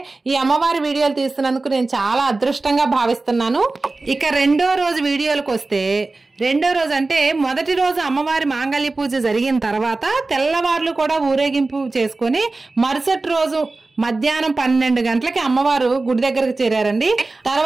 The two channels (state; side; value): quieter; left; 3.4 dB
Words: ఈ అమ్మవారి వీడియోలు తీస్తున్నందుకు నేను చాలా అదృష్టంగా భావిస్తున్నాను. ఇక రెండో రోజు వీడియోలకు వస్తే, రెండో రోజు అంటే మొదటి రోజు అమ్మవారి మాంగళ్య పూజ జరిగిన తర్వాత తెల్లవార్లు కూడా ఊరేగింపు చేసుకుని మరుసటి రోజు మధ్యాహ్నం 12 గంటలకి అమ్మవారు గుడి దగ్గరకు చేరారండి.